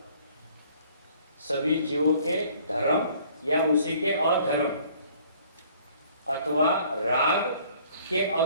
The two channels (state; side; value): inverted; both; correlation -0.57